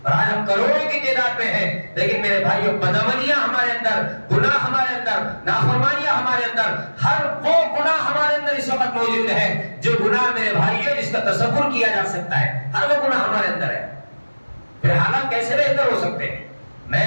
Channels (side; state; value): both; inverted; correlation -1.00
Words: اور آج ہم کروڑوں کی تعداد میں ہیں, لیکن میرے بھائیوں بدعملیاں ہمارے اندر, گناہ ہمارے اندر, نافرمانیاں ہمارے اندر, ہر وہ گناہ ہمارے اندر اس وقت موجود ہے جو گناہ میرے بھائیوں جس کا تصور کیا جا سکتا ہے. ہر وہ گناہ ہمارے اندر ہے. پھر حالات کیسے بہتر ہو سکتے ہیں؟